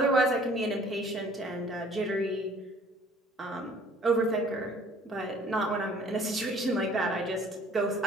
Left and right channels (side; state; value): both; normal; correlation 0.54